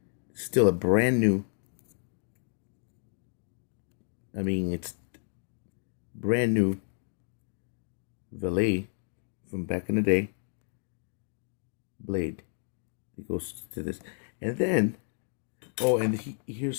Still a brand new. I mean, it's brand new Valet from back in the day blade. It goes to this. And then, oh, and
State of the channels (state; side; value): silent; right; 57 dB below the other